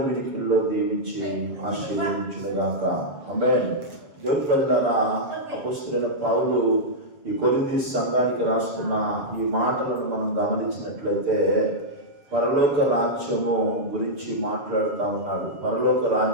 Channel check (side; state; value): left; late; 7.2 ms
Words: వినికిల్లో దీవించి ఆశీర్వదించుగాక. ఆమేన్. దేవుని ప్రజలారా, అపొస్తలుడైన పౌలు ఈ కొరింథీ సంఘానికి రాస్తున్న ఈ మాటలను మనం గమనించినట్లయితే పరలోక రాజ్యము గురించి మాట్లాడుతూ ఉన్నాడు. పరలోక